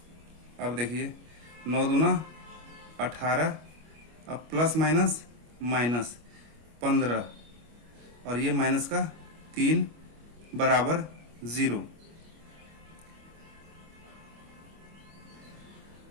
अब देखिए 9 दूना 18, अब प्लस माइनस माइनस 15 और ये माइनस का 3 बराबर 0।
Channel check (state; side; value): late; left; 25 ms